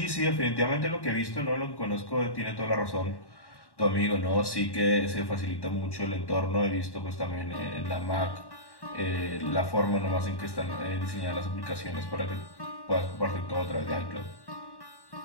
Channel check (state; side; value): late; right; 1.1 ms